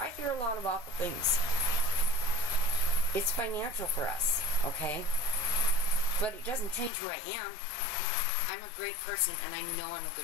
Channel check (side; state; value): right; drops out; at 6.9 s